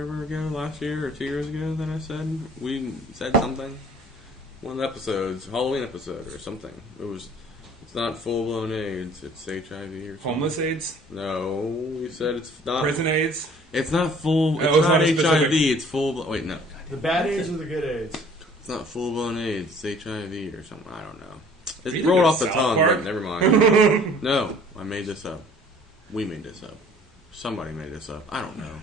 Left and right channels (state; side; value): normal; both; correlation 0.53